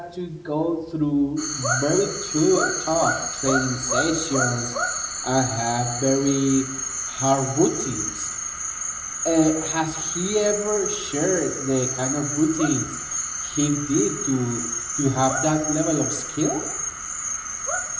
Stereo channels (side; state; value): both; identical; correlation 1.00